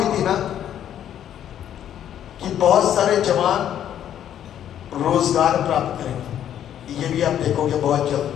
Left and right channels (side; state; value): right; quieter; 10.4 dB